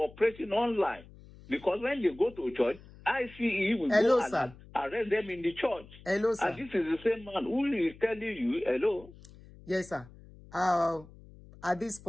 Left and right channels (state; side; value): noise; left; hum, 21 dB below the sound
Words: online. Because when they go to church, ICE will go and arrest them in the church. Hello, sir. And this is the same man who is telling you, hello? Yes, sir. At this